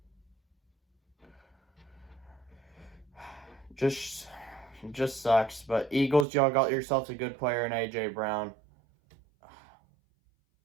Just sucks. But Eagles, y'all got yourselves a good player in A.J. Brown.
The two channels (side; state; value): left; drops out; at 6.2 s